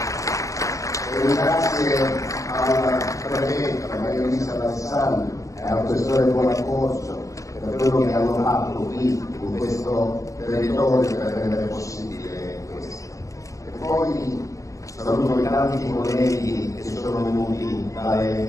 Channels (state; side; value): late; right; 0.16 ms